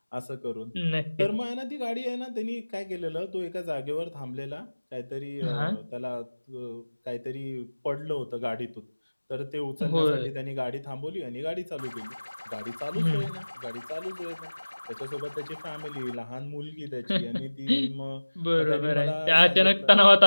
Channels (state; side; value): inverted; both; correlation -1.00